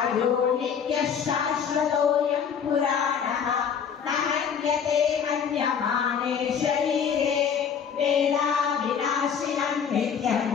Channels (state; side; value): quieter; right; 7.3 dB